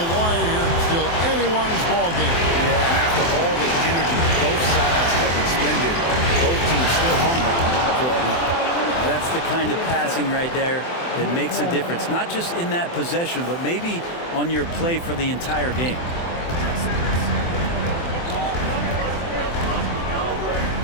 wire here. Still anyone's ball game. Yeah, and after all the energy both sides have expended, both teams still hungry for a win. That's the kind of passing right there that makes a difference. Not just in that possession, but maybe on your play for the entire game.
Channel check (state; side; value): late; right; 24 ms